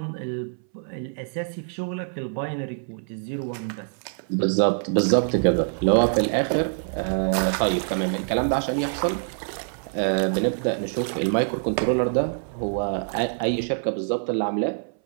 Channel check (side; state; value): left; silent; 60 dB below the other